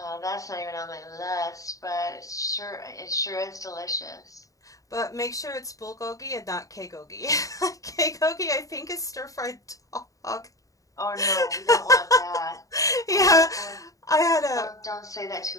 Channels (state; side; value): late; right; 0.16 ms